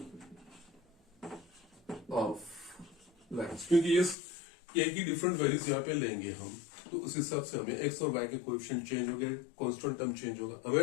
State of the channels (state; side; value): drops out; right; at 4.2 s